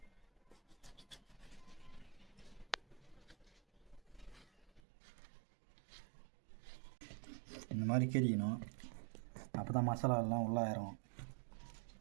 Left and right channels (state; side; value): drops out; left; at 4.8 s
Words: இந்த மாதிரி கீறிக்கணும், அப்போ தான் மசாலா எல்லாம் உள்ளே இறங்கும்.